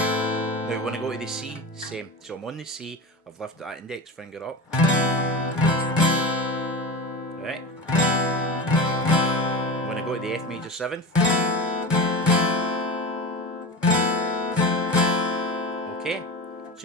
Now Now when I go to the C, same. So I'm on the C, I've lifted that index finger up. Right. When I go to the F major 7th. Okay,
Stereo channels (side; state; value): both; normal; correlation 0.27